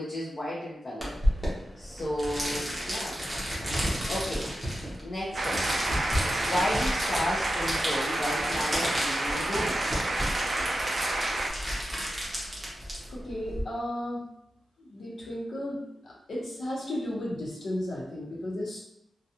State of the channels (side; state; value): both; normal; correlation 0.91